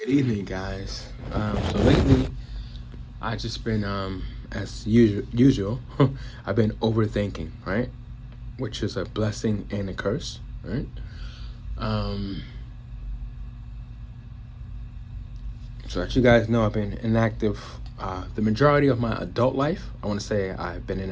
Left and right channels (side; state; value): both; identical; correlation 1.00